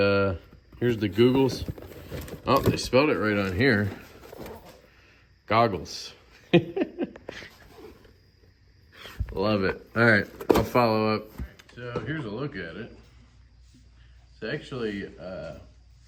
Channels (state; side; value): identical; both; correlation 1.00